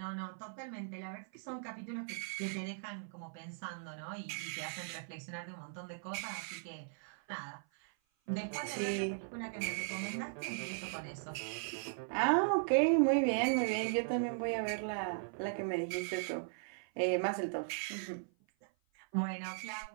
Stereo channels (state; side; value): silent; left; 52 dB below the other